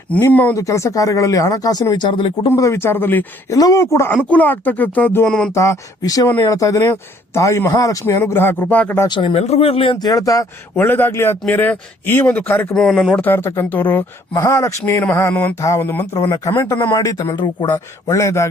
ನಿಮ್ಮ ಒಂದು ಕೆಲಸ ಕಾರ್ಯಗಳಲ್ಲಿ, ಹಣಕಾಸಿನ ವಿಚಾರದಲ್ಲಿ, ಕುಟುಂಬದ ವಿಚಾರದಲ್ಲಿ ಎಲ್ಲವೂ ಕೂಡ ಅನುಕೂಲ ಆಗ್ತಕ್ಕಂಥದ್ದು ಅನ್ನುವಂತಹ ವಿಷಯವನ್ನು ಹೇಳ್ತಾ ಇದ್ದೇನೆ. ತಾಯಿ ಮಹಾಲಕ್ಷ್ಮಿ ಅನುಗ್ರಹ ಕೃಪಾ ಕಟಾಕ್ಷ ನಿಮ್ಮೆಲ್ಲರಿಗೂ ಇರಲಿ ಅಂತ ಹೇಳ್ತಾ ಒಳ್ಳೇದಾಗ್ಲಿ. ಆತ್ಮೀಯರೇ, ಈ ಒಂದು ಕಾರ್ಯಕ್ರಮವನ್ನು ನೋಡ್ತಾ ಇರತಕ್ಕಂಥವ್ರು ಮಹಾಲಕ್ಷ್ಮಿ ನಮಃ ಅನ್ನುವಂತಹ ಒಂದು ಮಂತ್ರವನ್ನ ಕಮೆಂಟ್ ಅನ್ನ ಮಾಡಿ ತಮ್ಮೆಲ್ಲರಿಗೂ ಕೂಡ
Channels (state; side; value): normal; both; correlation 0.62